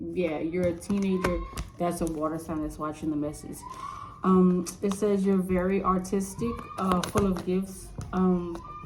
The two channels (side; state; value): both; identical; correlation 1.00